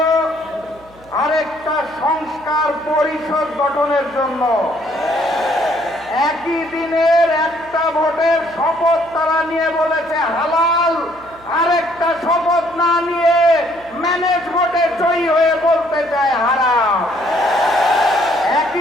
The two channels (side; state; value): right; noise; hum, 25 dB below the sound